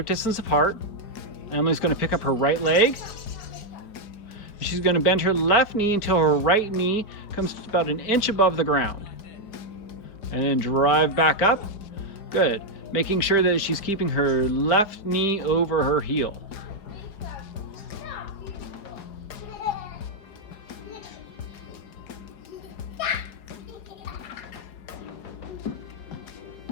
distance apart. Emily's going to pick up her right leg. She's going to bend her left knee until her right knee comes about an inch above the ground. And then drive back up. Good. Making sure that she's keeping her left knee over her heel.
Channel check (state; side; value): late; right; 4.8 ms